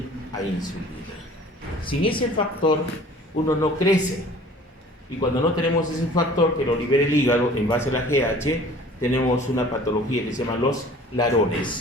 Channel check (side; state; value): both; normal; correlation 0.48